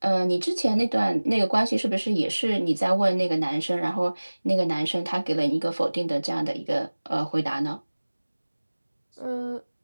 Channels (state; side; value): inverted; both; correlation -1.00